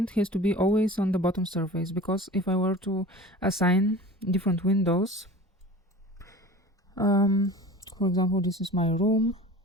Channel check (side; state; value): both; normal; correlation 0.39